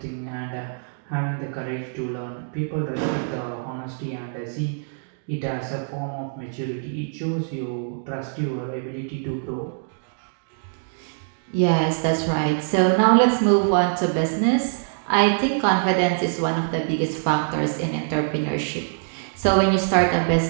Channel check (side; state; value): left; silent; digital silence